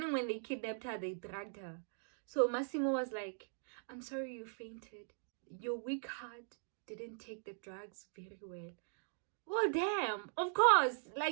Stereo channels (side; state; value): left; silent; digital silence